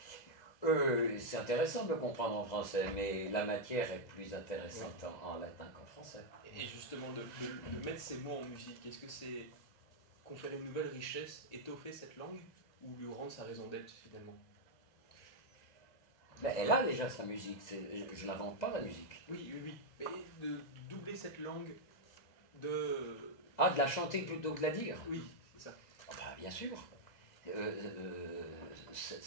C'est intéressant de le comprendre en français, mais la matière est plus intéressante en latin qu'en français. Et justement, de mettre ces mots en musique, est-ce que c'est conférer une nouvelle richesse, étoffer cette langue, ou lui rendre sa raison d'être finalement? Mais elle a déjà sa musique, je n'invente pas la musique. Oui. Mais de doubler cette langue, de... Ah, de la chanter plutôt que de la dire? Oui, c'est ça. Ah bah, bien sûr.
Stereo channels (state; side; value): late; right; 2.0 ms